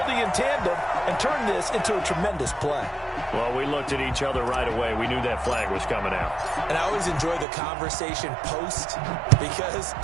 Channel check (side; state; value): left; drops out; at 7.5 s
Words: in tandem and turned this into a tremendous play. Well, we looked at each other right away. We knew that flag was coming out. And I always enjoy the conversation post because